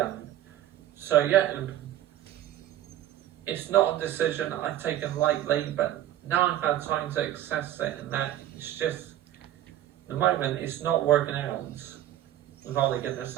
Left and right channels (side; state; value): left; quieter; 12.7 dB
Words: So yeah, it's not a decision I've taken lightly, but now I've had time to assess it, and that it's just, at the moment, it's not working out with Ole Gunnar